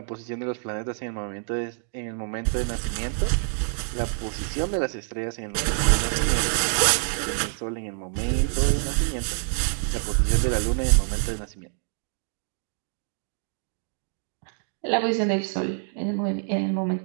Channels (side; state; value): left; silent; 61 dB below the other